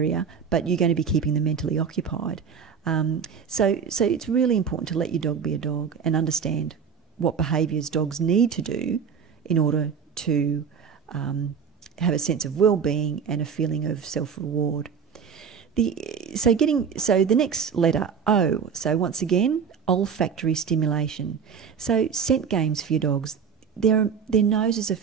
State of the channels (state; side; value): quieter; left; 6.7 dB